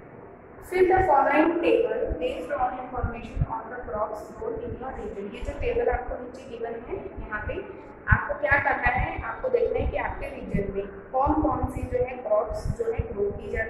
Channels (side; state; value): both; identical; correlation 1.00